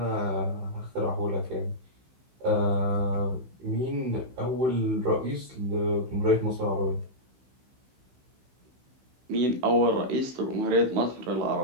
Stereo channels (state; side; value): late; left; 16 ms